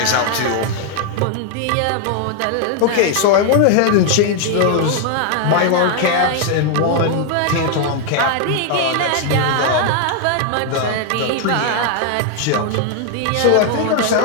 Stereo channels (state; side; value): different; both; correlation 0.00